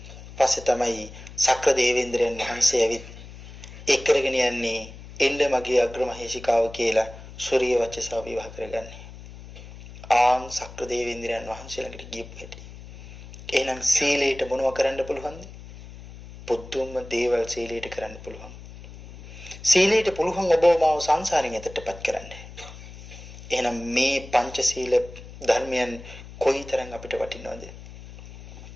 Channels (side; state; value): left; noise; hum, 16 dB below the sound